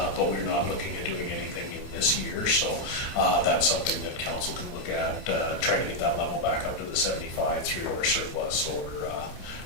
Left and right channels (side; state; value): right; late; 27 ms